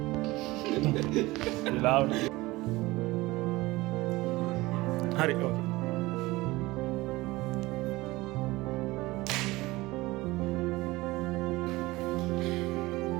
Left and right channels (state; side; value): quieter; left; 20.3 dB